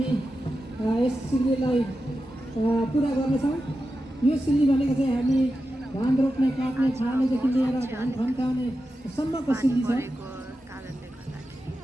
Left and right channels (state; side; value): normal; both; correlation 0.91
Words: यस सिल्लीलाई पुरा गर्नेछौँ। यो सिल्ली भनेको चाहिँ हामी धान रोप्ने काट्ने छाड्नेदेखि लिएर धान फन्काउने सम्मको सिल्ली छ। कारणले गर्दाखेरि